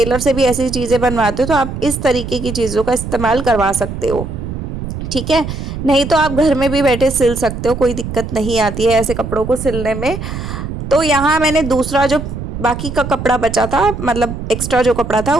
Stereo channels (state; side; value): noise; right; rumble, 7 dB below the sound